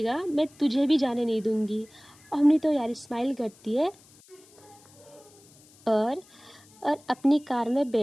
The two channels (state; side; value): noise; left; hiss, 27 dB below the sound